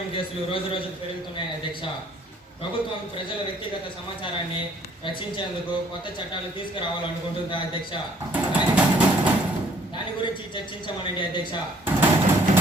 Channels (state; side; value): normal; both; correlation 0.61